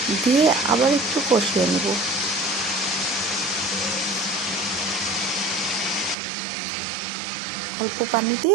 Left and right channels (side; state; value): left; drops out; at 6.2 s